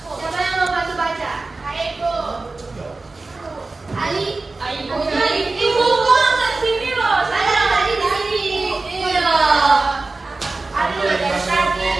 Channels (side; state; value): left; quieter; 3.5 dB